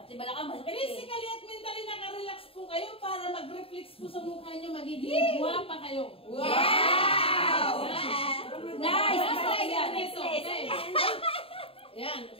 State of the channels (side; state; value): right; late; 0.27 ms